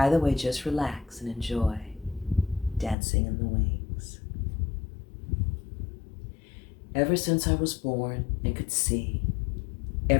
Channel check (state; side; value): drops out; right; at 3.0 s